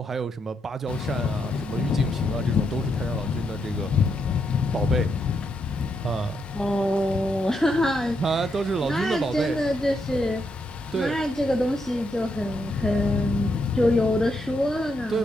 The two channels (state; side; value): normal; both; correlation 0.80